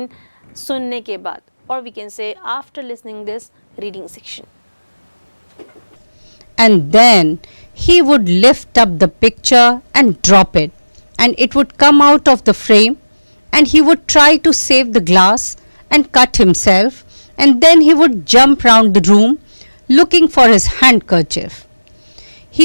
सुनने के बाद, और we can say after listening this reading section. And then he would lift up the picture and drop it, and it would come out of the frame, and he would try to save the glass and cut himself, and then he would jump round the room looking for his handkerchief.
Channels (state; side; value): inverted; both; correlation -1.00